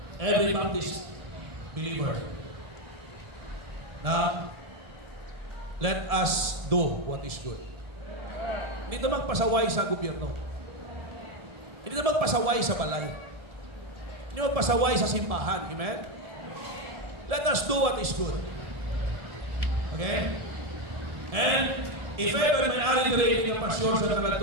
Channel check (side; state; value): left; late; 1.7 ms